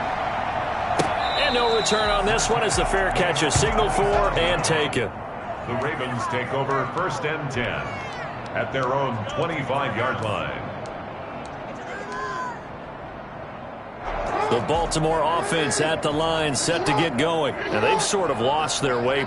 And no return on this one as the fair catch is signaled for and taken. The Ravens take over 1st and 10 at their own 25-yard line. The Baltimore offense at the line set to get going. Now they've sort of lost their way,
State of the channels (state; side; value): identical; both; correlation 1.00